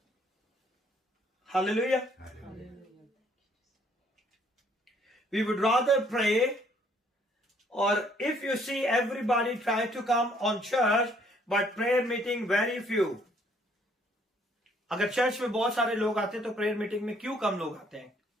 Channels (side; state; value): both; normal; correlation 0.64